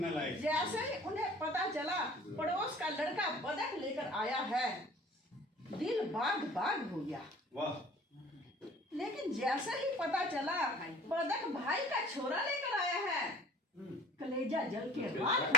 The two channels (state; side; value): normal; both; correlation 0.47